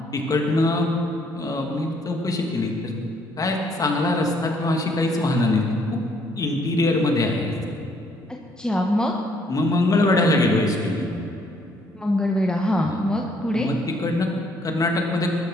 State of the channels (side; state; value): both; normal; correlation 0.67